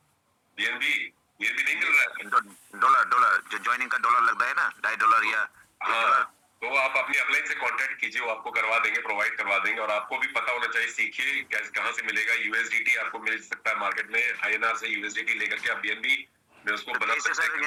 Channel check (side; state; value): both; identical; correlation 1.00